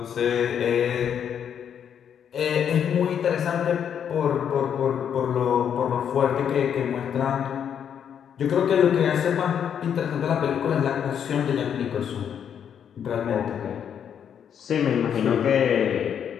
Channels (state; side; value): quieter; right; 8.4 dB